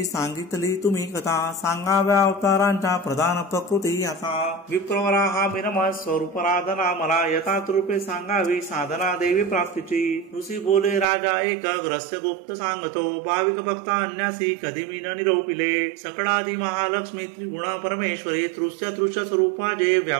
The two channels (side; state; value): left; drops out; at 11.1 s